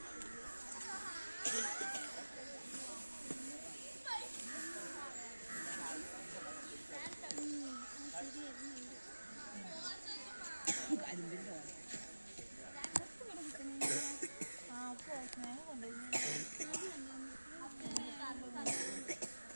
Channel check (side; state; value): both; inverted; correlation -1.00